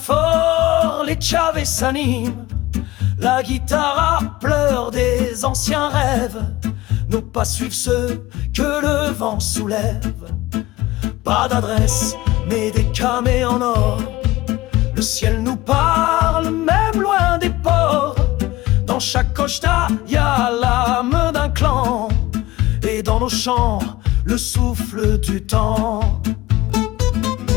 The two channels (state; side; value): quieter; right; 18.0 dB